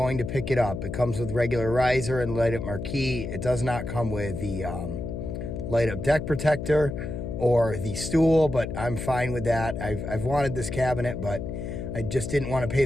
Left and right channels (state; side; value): noise; left; hum, 5 dB below the sound